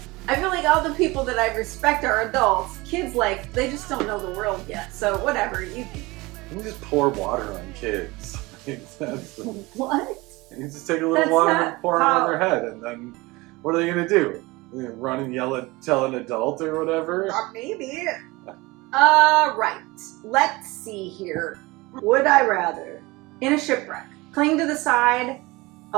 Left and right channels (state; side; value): quieter; left; 22.5 dB